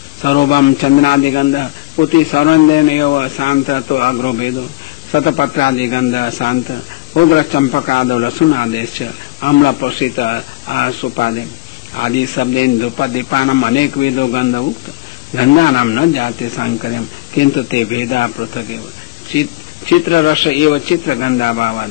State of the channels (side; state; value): right; quieter; 20.1 dB